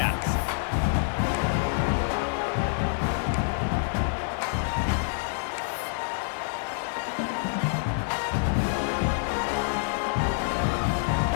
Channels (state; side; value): silent; right; 57 dB below the other